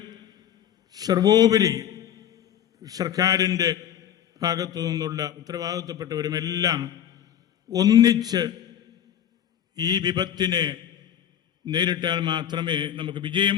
സർവോപരി സർക്കാരിൻ്റെ ഭാഗത്തു നിന്നുള്ള ഉത്തരവാദിത്തപ്പെട്ടവരുമെല്ലാം ഒന്നിച്ച് ഈ വിപത്തിനെ നേരിട്ടാൽ മാത്രമേ നമുക്ക് വിജയം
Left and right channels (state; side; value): quieter; right; 10.0 dB